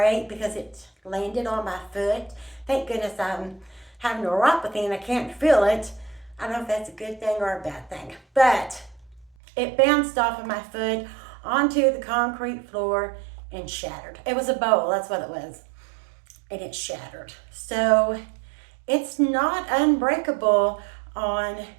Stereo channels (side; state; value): left; drops out; at 9.3 s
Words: because it landed on my foot. Thank goodness I'm having neuropathy and I can't feel it. I don't know if that's a good thing or a bad thing, but it bounced off of my foot onto the concrete floor and shattered. It was a bowl, that's what it was. And it shattered. So it's not unbreakable on